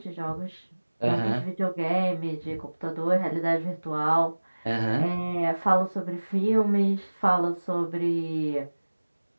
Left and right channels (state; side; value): inverted; both; correlation -1.00